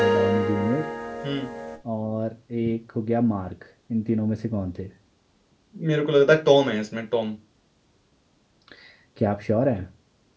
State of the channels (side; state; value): both; identical; correlation 1.00